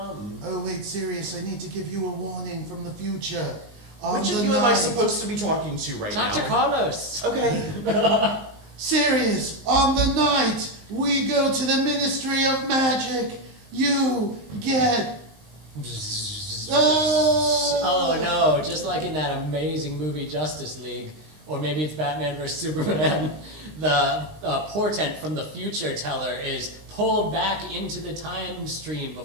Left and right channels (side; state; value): left; late; 19 ms